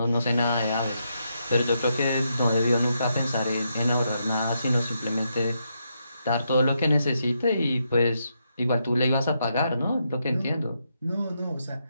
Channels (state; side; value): inverted; both; correlation -0.81